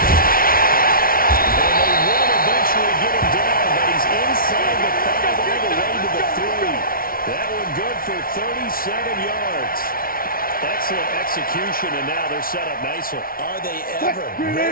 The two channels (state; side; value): late; right; 0.43 ms